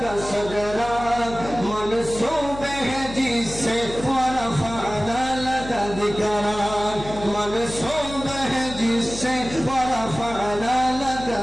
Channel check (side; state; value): left; noise; hum, 12 dB below the sound